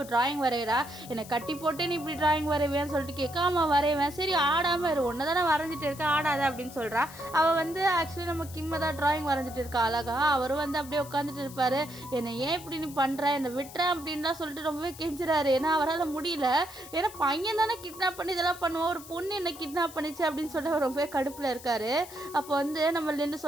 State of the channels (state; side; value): noise; left; hiss, 17 dB below the sound